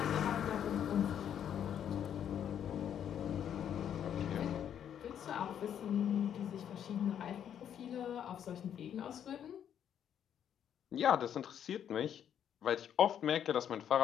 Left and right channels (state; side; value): quieter; right; 9.3 dB